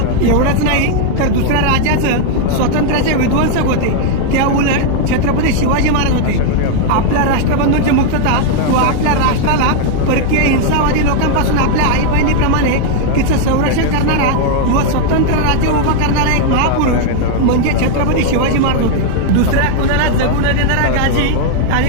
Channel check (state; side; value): different; both; correlation 0.00